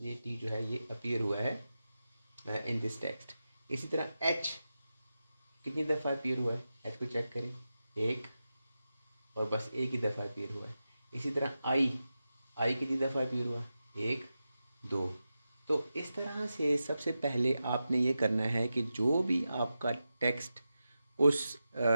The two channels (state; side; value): inverted; both; correlation -0.91